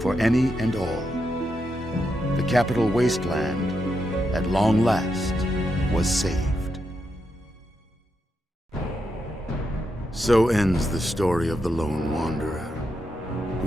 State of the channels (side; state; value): both; normal; correlation 0.84